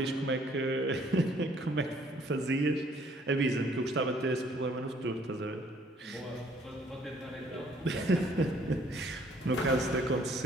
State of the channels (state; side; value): normal; both; correlation 0.61